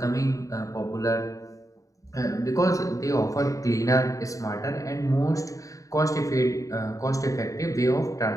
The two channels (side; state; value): right; late; 0.16 ms